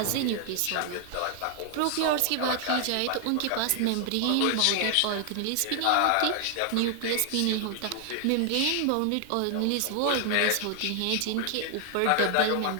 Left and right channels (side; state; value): both; different; correlation 0.00